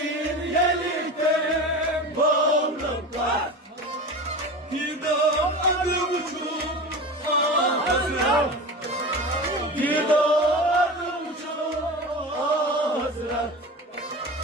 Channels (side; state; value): both; normal; correlation 0.30